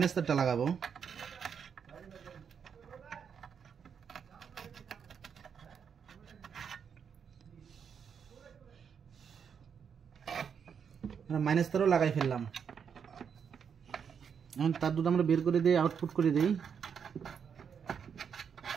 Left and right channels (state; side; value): quieter; left; 7.1 dB